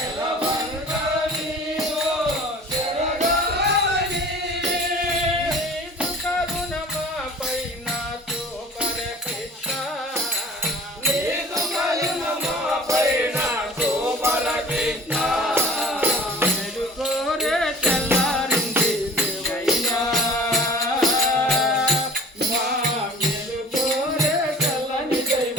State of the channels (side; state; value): both; normal; correlation 0.45